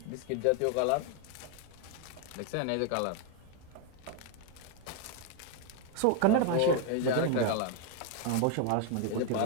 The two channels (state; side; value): different; both; correlation 0.01